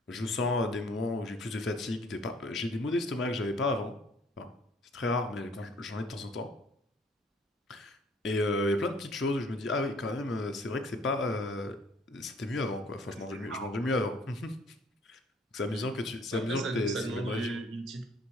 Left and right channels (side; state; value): both; normal; correlation 0.58